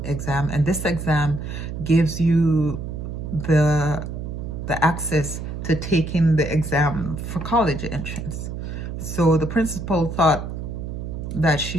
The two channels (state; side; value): noise; right; hum, 6 dB below the sound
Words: exam, and this exam gives you the access to taking the exam for college entrance. So the principal thought that